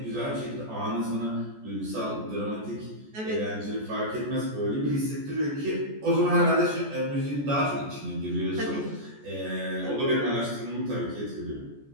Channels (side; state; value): left; late; 14 ms